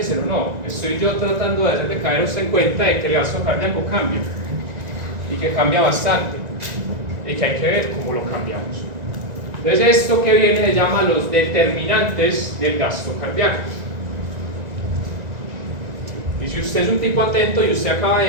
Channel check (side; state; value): left; late; 1.9 ms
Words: no. Estoy yo tratando de hacerle caer a usted en cuenta de que el gasto cardíaco cambia y que cambia bastante. y que hay que ver cómo lo cambiamos. Entonces esto que viene se llama los determinantes del gasto cardíaco. Y si usted es un tipo atento y usted acaba